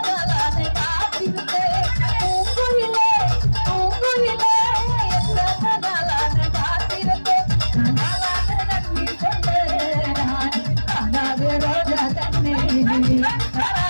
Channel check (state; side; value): inverted; both; correlation -1.00